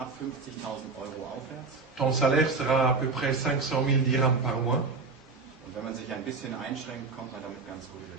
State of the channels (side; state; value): left; quieter; 4.3 dB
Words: 50.000 Euro aufwärts. Ton salaire sera à peu près 500 000 dirhams par mois. Und wenn man sich ein bisschen einschränkt, kommt man damit ganz gut über